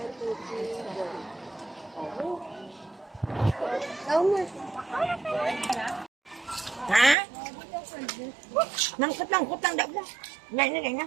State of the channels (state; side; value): drops out; left; at 7.2 s